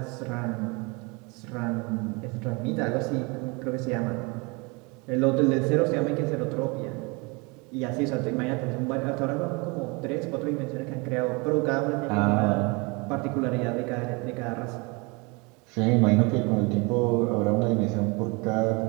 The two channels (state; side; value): quieter; left; 28.7 dB